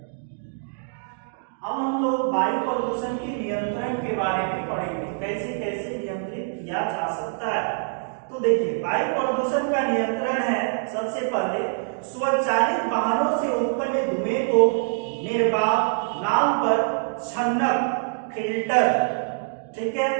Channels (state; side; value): silent; left; digital silence